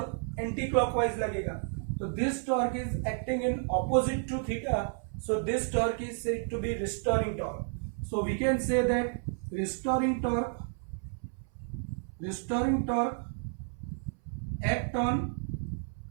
एंटी क्लॉकवाइज लगेगा. तो this torque is acting in opposite to theta, so this torque is said to be restoring torque. So we can say that restoring torque act on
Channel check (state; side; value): silent; left; 57 dB below the other